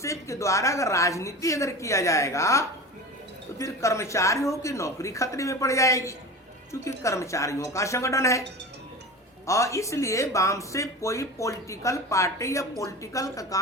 के द्वारा अगर राजनीति अगर किया जाएगा तो फिर कर्मचारियों की नौकरी खतरे में पड़ जाएगी, क्योंकि कर्मचारियों का संगठन है। और इसलिए बामसेफ कोई पॉलिटिकल पार्टी या पॉलिटिकल का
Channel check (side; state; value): both; normal; correlation 0.31